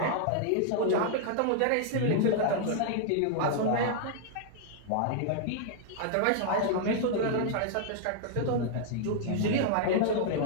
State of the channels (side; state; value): both; different; correlation -0.01